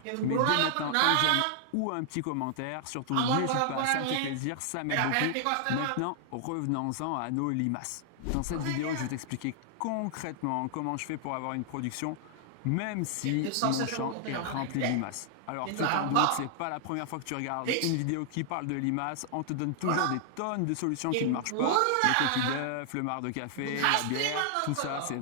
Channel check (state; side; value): different; both; correlation 0.00